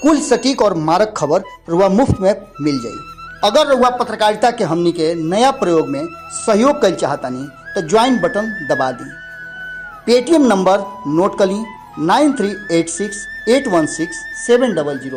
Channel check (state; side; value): identical; both; correlation 1.00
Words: कुल सटीक और मारक खबर रुआ मुफ्त में मिल जाई। अगर रुआ पत्रकारिता के हमनी के नया प्रयोग में सहयोग कर चाहतानी तो ज्वाइन बटन दबा दी। पेटीएम नंबर नोट कर ली